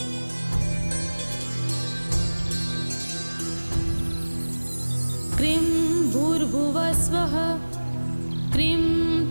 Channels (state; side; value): inverted; both; correlation -1.00